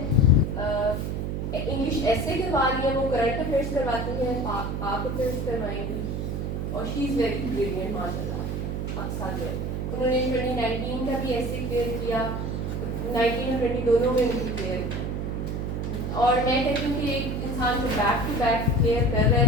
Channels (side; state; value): right; noise; hum, 2 dB below the sound